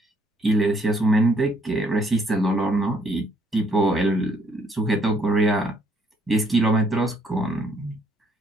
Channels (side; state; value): both; normal; correlation 0.67